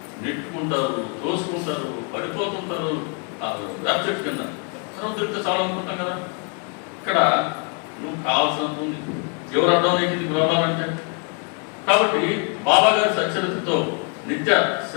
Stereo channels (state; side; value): quieter; right; 36.6 dB